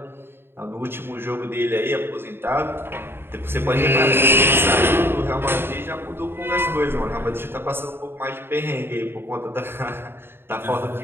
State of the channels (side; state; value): left; late; 0.11 ms